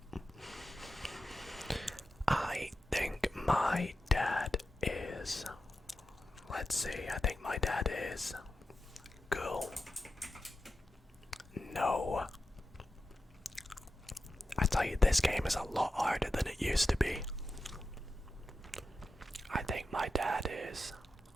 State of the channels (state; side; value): normal; both; correlation 0.91